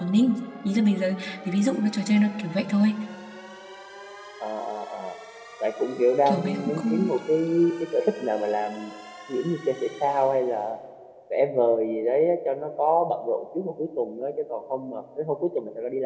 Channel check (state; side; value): identical; both; correlation 1.00